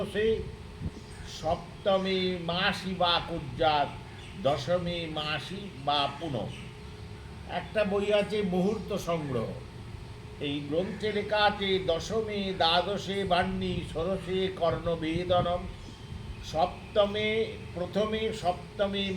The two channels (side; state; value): both; identical; correlation 1.00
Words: সপ্তমে মাসি বা কুজ্জাত, দশমে মাসি বা পুন। একটা বই আছে মুহূর্ত সংগ্রহ, এই গ্রন্থে লেখা আছে দশমে দ্বাদশে বাহ্নী, ষোড়শে কর্ণভেদনম, প্রথমে সপ্তমে